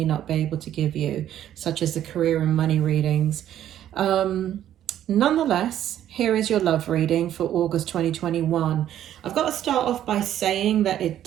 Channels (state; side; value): quieter; left; 11.4 dB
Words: not be able to give you, such as the career and money readings. Nonetheless, here is your love reading for August 2021. I've got to start off by saying that it